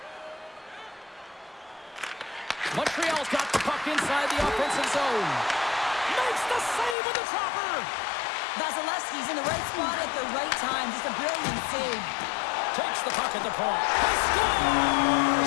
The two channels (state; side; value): drops out; right; at 7.0 s